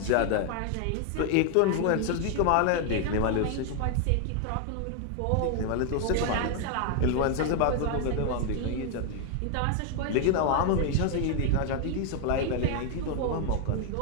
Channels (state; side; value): different; both; correlation 0.00